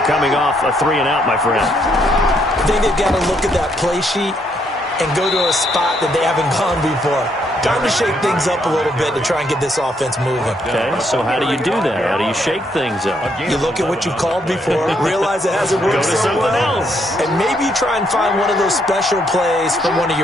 coming off a 3-and-out, my friend. I think they've got to look at that play sheet and go to a spot that they haven't gone before. Time to shake things up a little bit to try and get this offense moving. Okay, so how do you do that? How do you shake things up? You look at what you've called before, realize it hasn't worked so well, and maybe try and find one of those special plays from one of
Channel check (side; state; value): both; normal; correlation 0.73